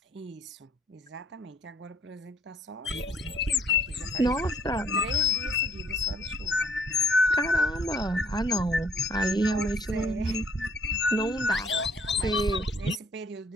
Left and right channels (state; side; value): normal; both; correlation 0.63